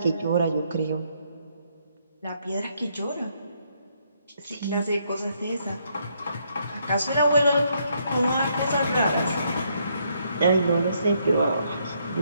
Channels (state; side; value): inverted; both; correlation -0.73